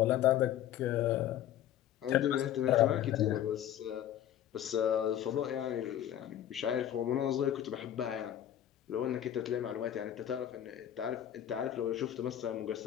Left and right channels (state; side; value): quieter; right; 11.2 dB